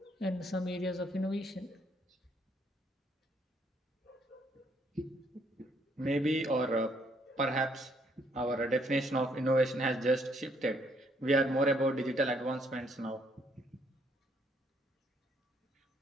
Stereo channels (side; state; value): both; normal; correlation 0.69